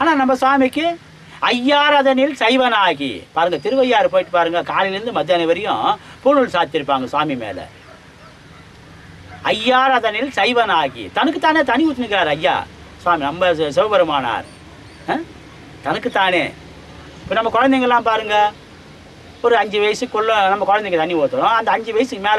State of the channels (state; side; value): identical; both; correlation 1.00